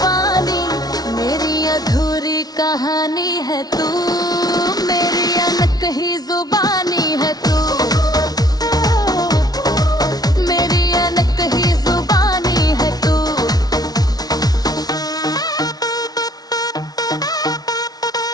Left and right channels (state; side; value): late; right; 0.19 ms